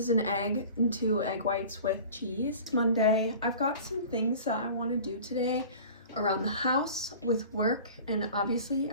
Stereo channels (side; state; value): both; inverted; correlation -0.41